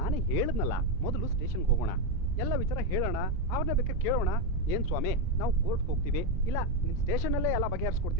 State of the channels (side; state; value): both; normal; correlation 0.07